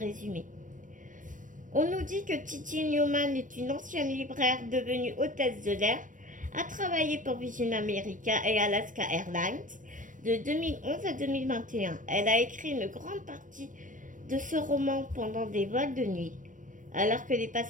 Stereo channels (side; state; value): left; late; 0.38 ms